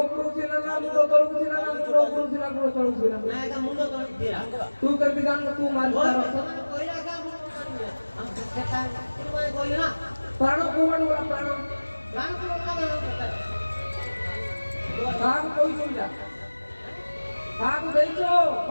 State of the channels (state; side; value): inverted; both; correlation -1.00